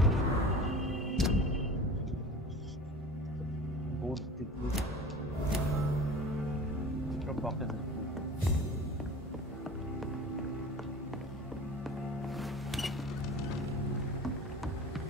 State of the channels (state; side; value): normal; both; correlation 0.38